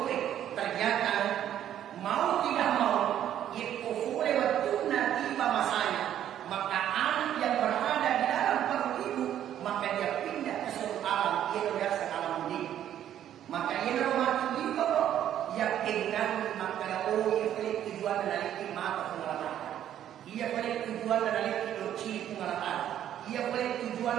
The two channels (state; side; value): quieter; left; 10.9 dB